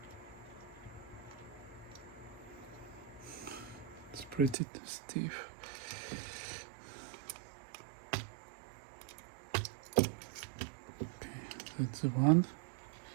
It's pretty stiff. That's the one.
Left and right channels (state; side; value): drops out; left; at 4.5 s